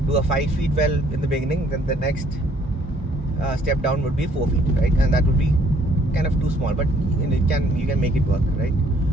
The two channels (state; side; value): normal; both; correlation 0.63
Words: do a 5 feet well in the beginning, then the next step down would be 4 feet, right? And that would be kind of too small, but you can make it work, right?